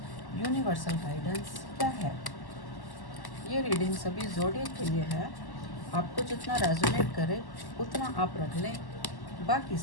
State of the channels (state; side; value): late; right; 1.1 ms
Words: यूनिवर्सल गाइडेंस क्या है। ये रीडिंग सभी ज़ोडिएक के लिए है। आपको जितना रेजोनेट करे उतना आप रख लें, बाकी